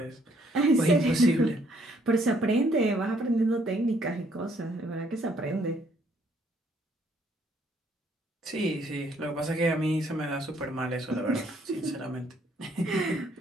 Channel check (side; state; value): both; normal; correlation 0.66